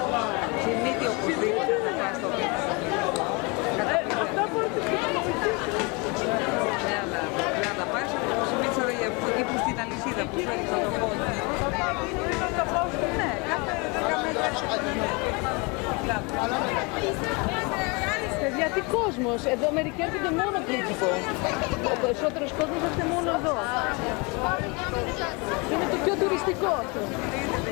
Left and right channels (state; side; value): quieter; right; 29.3 dB